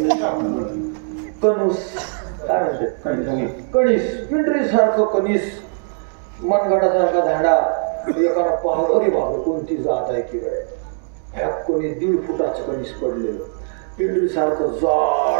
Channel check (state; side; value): silent; left; digital silence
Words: ना. कणूस काय म्हणते? कणीस. पिंडरी सारखं कणीस. मनगटासारखा झाडा. एकाला पाहत अरे बाबा कोणती जात आहे की काय? ह्या कोणी 1.5 फुटाचं कणीस पडलेलं. पिंडरी सारखं